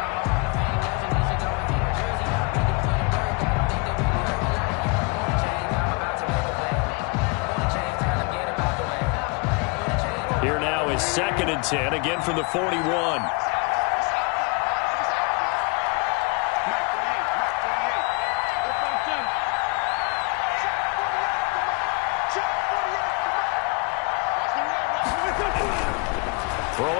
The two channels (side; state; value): right; quieter; 30.4 dB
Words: Here now is 2nd and 10, again from the 41.